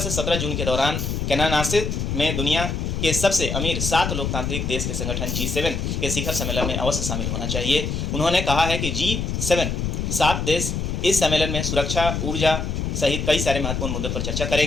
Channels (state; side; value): noise; left; rumble, 2 dB below the sound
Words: 17 जून के दौरान कैनानासिस में दुनिया के सबसे अमीर 7 लोकतांत्रिक देश के संगठन G7 के शिखर सम्मेलन में अवश्य शामिल होना चाहिए। उन्होंने कहा है कि G7 7 देश इस सम्मेलन में सुरक्षा, ऊर्जा, सहित कई सारे महत्वपूर्ण मुद्दों पर चर्चा